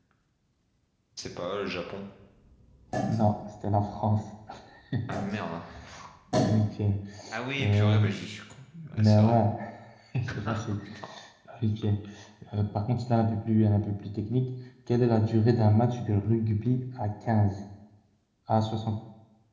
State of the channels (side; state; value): both; identical; correlation 1.00